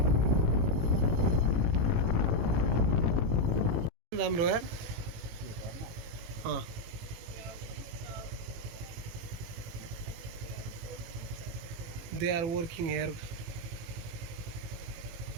राम्रो यार they are working here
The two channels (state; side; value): late; left; 18 ms